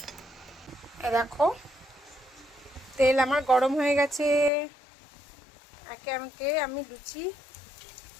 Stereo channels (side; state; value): right; drops out; at 4.5 s